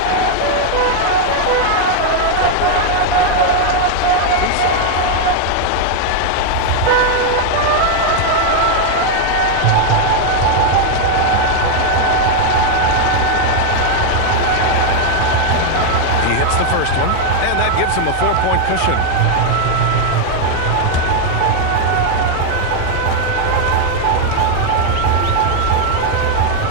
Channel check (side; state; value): both; different; correlation 0.01